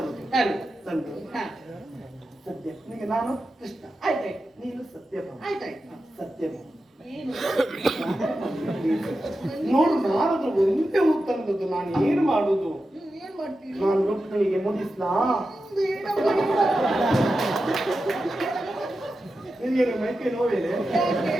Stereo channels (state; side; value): normal; both; correlation 0.91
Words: ತಂದು ಸತ್ಯ ನಿಮಗೆ ನಾನು ಕೃಷ್ಣ ಆಯ್ತಾಯ್ತು, ನೀನು ಸತ್ಯಭ ಆಯ್ತಾಯ್ತು, ಸತ್ಯಭ ಏನು ನೋಡು. ನಾನದ್ರ ಒಂದೇ ಹೂ ತಂದದ್ದು, ನಾನು ಏನು ಮಾಡುದು? ಏನ್ ಮಾಡ್ತೀನಿ? ನಾನು ರುಕ್ಮಿಣಿಗೆ ಮುಗಿಸ್ಲಾ? ನಿನಗೇನು ಮೈಕೈ ನೋವೇನೆ?